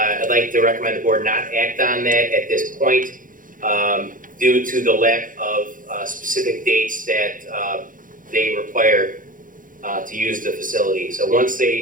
like to recommend the board not act on that at this point due to the lack of specific dates that they require to use the facility. So once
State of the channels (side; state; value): left; late; 0.39 ms